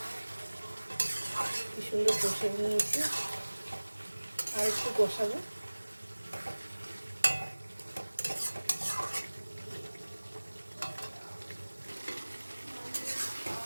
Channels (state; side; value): inverted; both; correlation -1.00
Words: কি সুন্দর কষে নিয়েছি, আর একটু কষাবো।